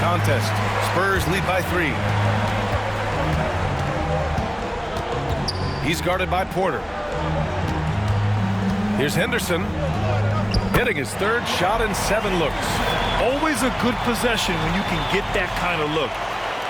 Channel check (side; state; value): both; identical; correlation 1.00